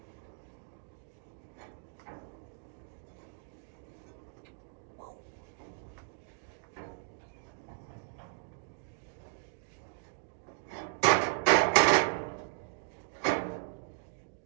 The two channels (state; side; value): silent; left; digital silence